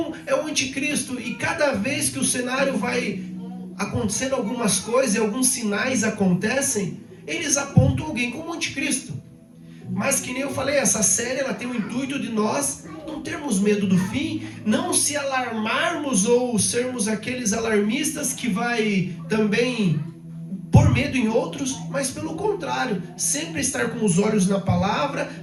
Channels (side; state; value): both; identical; correlation 1.00